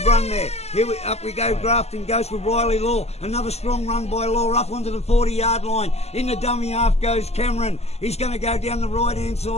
run there. Up we go. Grafton goes with Riley Law. Another strong run by Law up onto the 40-yard line. In the dummy half goes Cameron. He's going to go down the right-hand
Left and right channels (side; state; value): right; late; 0.30 ms